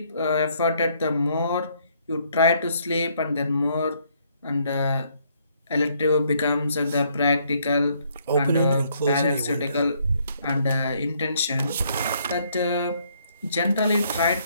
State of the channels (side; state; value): both; inverted; correlation -0.68